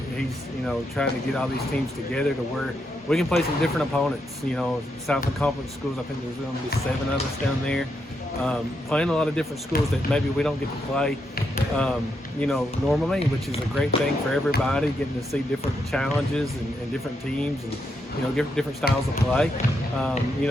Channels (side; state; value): both; normal; correlation 0.81